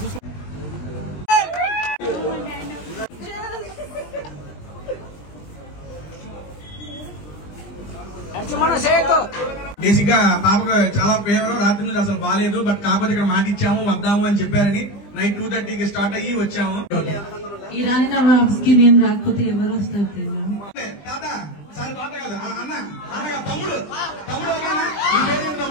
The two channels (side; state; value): right; late; 20 ms